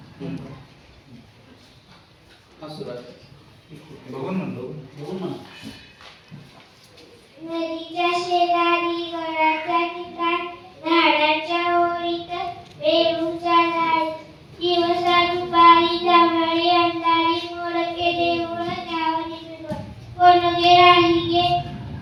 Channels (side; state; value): both; identical; correlation 1.00